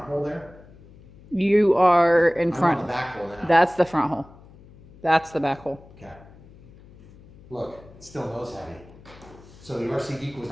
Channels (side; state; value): left; noise; hum, 23 dB below the sound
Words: hole there? You are in front. I'm on the back hole now. That's the front hole. That's the back hole. Okay. Look, it's still nose heavy. So the RC Geek was